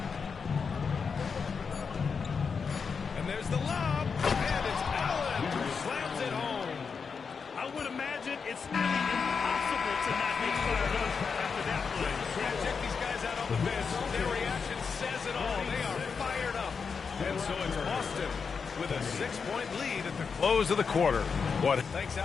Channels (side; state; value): right; quieter; 5.6 dB